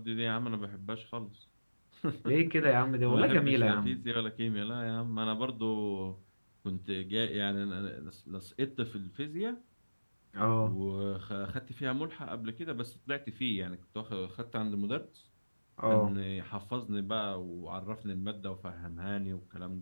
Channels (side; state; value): both; inverted; correlation -1.00